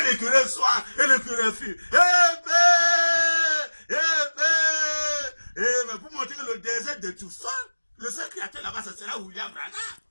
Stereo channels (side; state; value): both; inverted; correlation -1.00